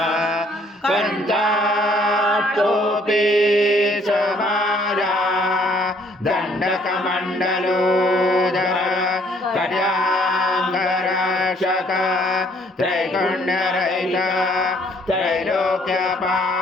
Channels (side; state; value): both; normal; correlation 0.63